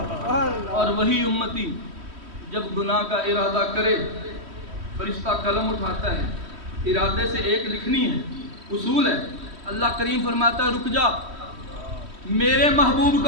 اور وہی امتی جب گناہ کا ارادہ کرے فرشتہ قلم اٹھاتا ہے، ارادے سے ایک لکھنی ہے، اصول ہے۔ اللہ کریم فرماتا ہے رک جا، میرے محبوب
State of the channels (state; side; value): late; left; 3.1 ms